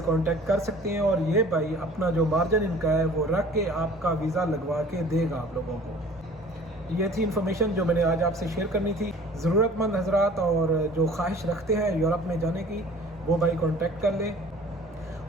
कांटेक्ट कर सकते हैं और ये भाई अपना जो मार्जिन इनका है वो रख के आपका वीज़ा लगवा के देगा आप लोगों को। ये थी इन्फॉर्मेशन जो मैंने आज आपसे शेयर करनी थी। ज़रूरतमंद हजरात और जो ख्वाहिश रखते हैं यूरोप में जाने की वो भाई कांटेक्ट कर लें।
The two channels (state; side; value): normal; both; correlation 0.48